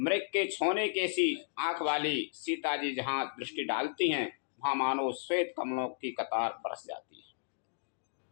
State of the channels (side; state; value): right; silent; digital silence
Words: के छोने के सी आंख वाली सीता जी जहाँ दृष्टि डालती हैं वहाँ मानो श्वेत कमलों की कतार बरस जाती है।